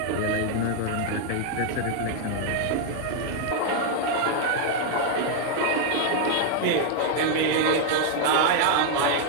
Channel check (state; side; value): different; both; correlation 0.00